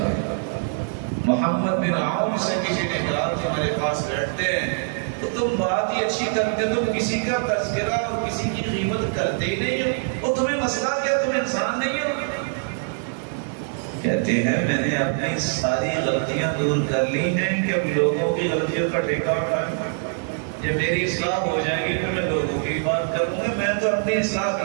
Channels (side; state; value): left; silent; 63 dB below the other